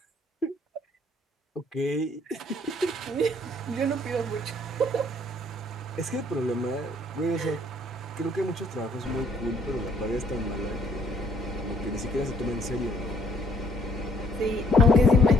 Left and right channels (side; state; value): both; normal; correlation 0.64